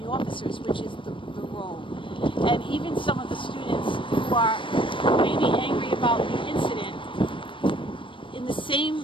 officers, which is the role. And even some of the students who are maybe angry about the incident, in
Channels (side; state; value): right; late; 0.25 ms